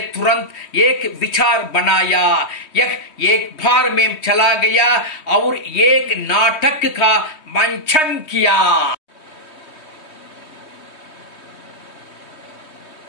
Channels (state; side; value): late; right; 3.2 ms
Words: तुरंत एक विचार बनाया। यह एक बार में चला गया और एक नाटक का मंचन किया।